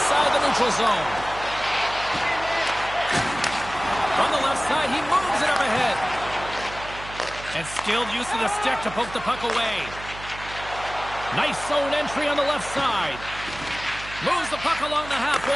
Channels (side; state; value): right; noise; hum, 14 dB below the sound